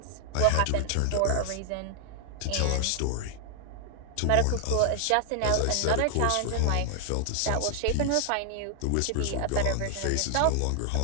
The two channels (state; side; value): different; both; correlation 0.00